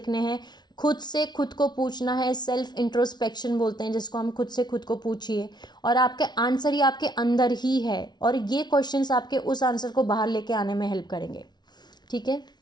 हैं, खुद से खुद को पूछना है, सेल्फ इंट्रोस्पेक्शन बोलते हैं जिसको, हम खुद से खुद को पूछिए और आपके आंसर ही आपके अंदर ही है और ये क्वेश्चंस आपके उस आंसर को बाहर लेके आने में हेल्प करेंगे, ठीक है।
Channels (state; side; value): late; right; 0.20 ms